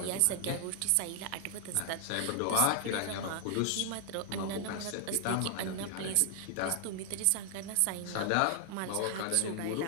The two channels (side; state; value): both; different; correlation 0.00